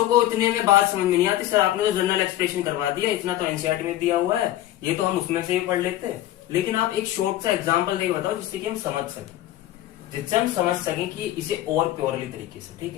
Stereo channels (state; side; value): quieter; right; 14.0 dB